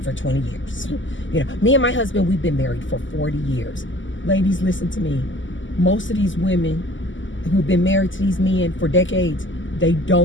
for 20 years. You know, me and my husband, we've been married for 40 years. Ladies, listen to me. Most of these women who've been married to these men for decades, they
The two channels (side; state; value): right; late; 0.55 ms